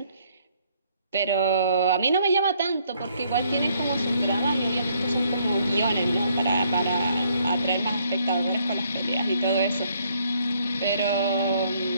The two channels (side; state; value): both; inverted; correlation -0.67